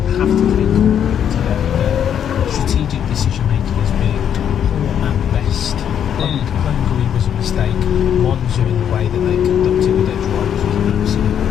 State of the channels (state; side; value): quieter; right; 9.0 dB